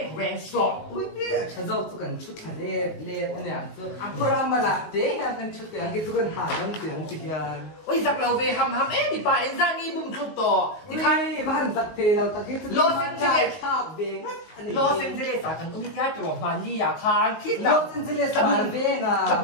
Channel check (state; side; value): late; right; 19 ms